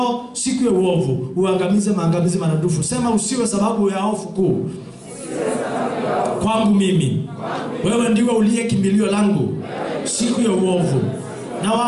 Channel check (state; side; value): identical; both; correlation 1.00